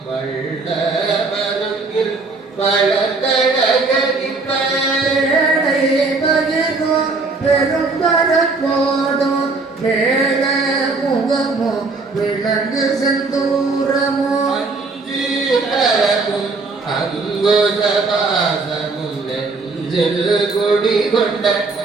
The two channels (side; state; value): left; quieter; 3.9 dB